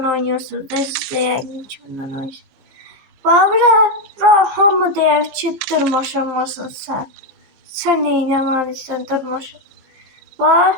oynuyorsunuz. Siz de yəqin ki bundan oynuyorsunuz. Babura hamı deyər ki dırmaşamazsın sen. Sen neynəməlisən dırmaşam.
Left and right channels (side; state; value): left; late; 15 ms